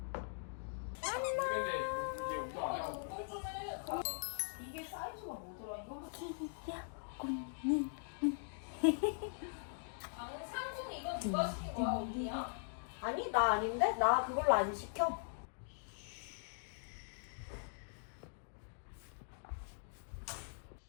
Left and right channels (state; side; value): silent; right; digital silence